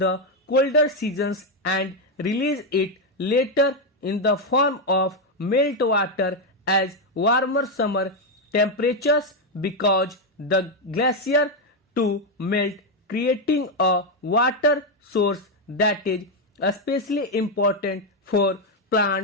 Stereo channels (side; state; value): both; normal; correlation 0.04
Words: colder seasons and release it later in the form of meltwater as warmer summer temperatures because the glacier to melt, creating a water source that is especially important for